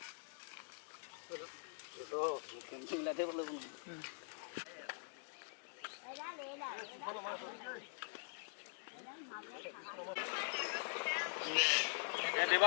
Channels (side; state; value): right; silent; digital silence